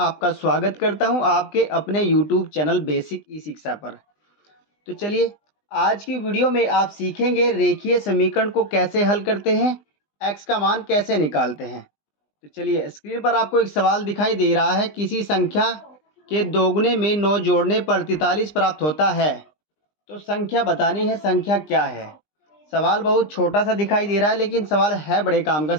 स्वागत करता हूं आपके अपने यूट्यूब चैनल बेसिक ई शिक्षा पर। तो चलिए, आज की वीडियो में आप सीखेंगे रेखीय समीकरण को कैसे हल करते हैं, एक्स का मान कैसे निकालते हैं। तो चलिए, स्क्रीन पर आपको एक सवाल दिखाई दे रहा है, किसी संख्या के दोगुने में 9 जोड़ने पर 43 प्राप्त होता है। तो संख्या बतानी है, संख्या क्या है। सवाल बहुत छोटा सा दिखाई दे रहा है, लेकिन सवाल है बड़े काम का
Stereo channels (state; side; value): late; right; 20 ms